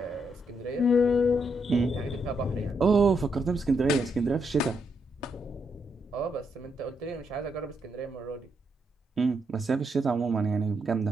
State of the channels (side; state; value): both; normal; correlation 0.79